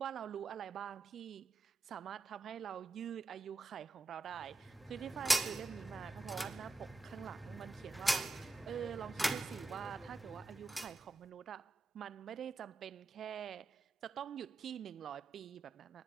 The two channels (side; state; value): left; quieter; 3.0 dB